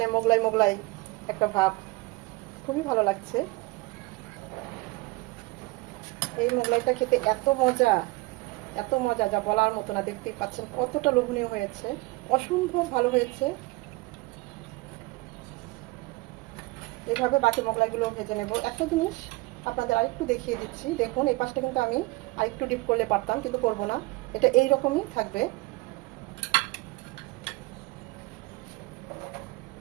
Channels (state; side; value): quieter; left; 22.9 dB